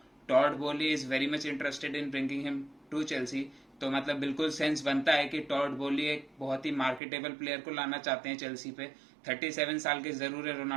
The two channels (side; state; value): left; drops out; at 7.0 s